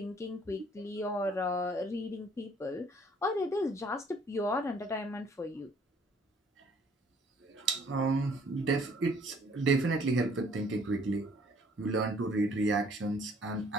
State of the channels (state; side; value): normal; both; correlation 0.60